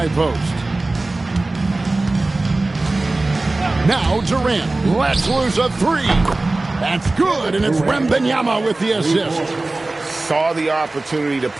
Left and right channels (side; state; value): left; quieter; 3.0 dB